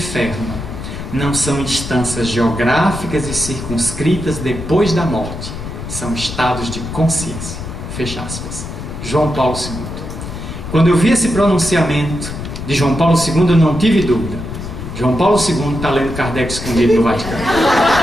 não são instâncias geográficas e circunscritas depois da morte, são estados de consciência. Fecha aspas. João Paulo II. Quando eu vi esse pronunciamento de João Paulo II, eu não tive dúvida. João Paulo II está lendo Kardec escondido no Vaticano.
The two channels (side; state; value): left; noise; rumble, 8 dB below the sound